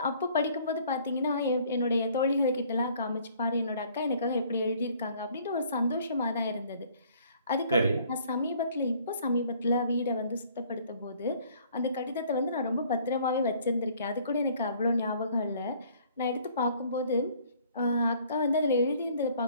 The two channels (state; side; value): inverted; both; correlation -0.58